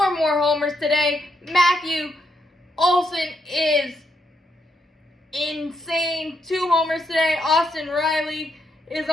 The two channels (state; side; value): normal; both; correlation 0.78